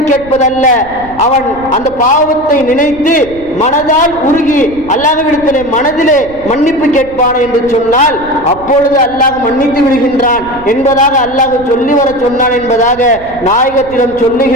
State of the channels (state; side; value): noise; right; rumble, 19 dB below the sound